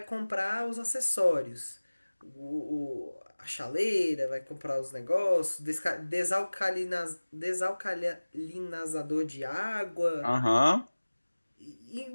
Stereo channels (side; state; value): both; inverted; correlation -1.00